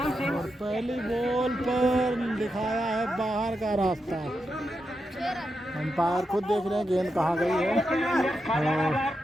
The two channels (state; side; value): normal; both; correlation 0.87